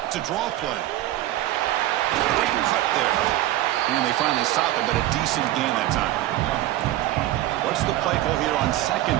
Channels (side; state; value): left; quieter; 14.8 dB